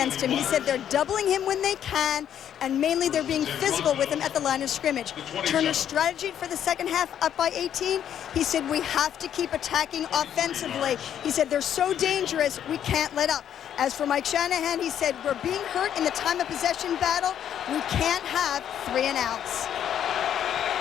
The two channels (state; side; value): quieter; right; 9.8 dB